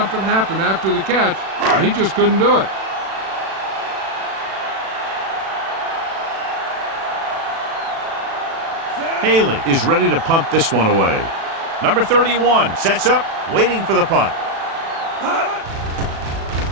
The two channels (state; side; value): late; left; 36 ms